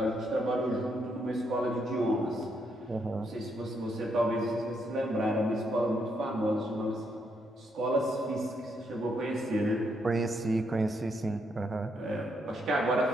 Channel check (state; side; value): normal; both; correlation 0.77